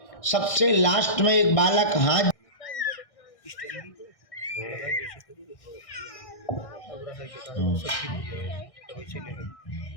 सबसे लास्ट में एक बालक हाथ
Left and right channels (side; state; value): right; late; 1.6 ms